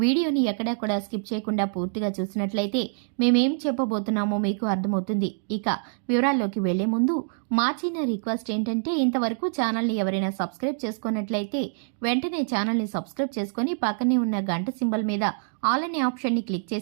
వీడియోని ఎక్కడా కూడా స్కిప్ చేయకుండా పూర్తిగా చూసినట్లయితే మేమేం చెప్పబోతున్నామో మీకు అర్థమవుతుంది. ఇక వివరాల్లోకి వెళ్లే ముందు మా చిన్న రిక్వెస్ట్ ఏంటంటే, ఇంతవరకు ఛానల్ని ఎవరైనా సబ్స్క్రైబ్ చేసుకున్నట్లయితే వెంటనే ఛానల్ని సబ్స్క్రైబ్ చేసుకుని పక్కనే ఉన్న గంట సింబల్ మీద ఆల్ అనే ఆప్షన్ని క్లిక్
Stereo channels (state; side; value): silent; left; digital silence